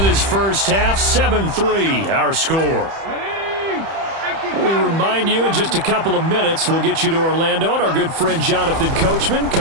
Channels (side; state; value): left; late; 31 ms